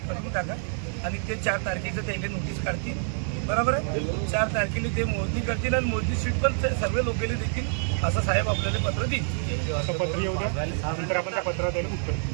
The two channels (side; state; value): left; silent; digital silence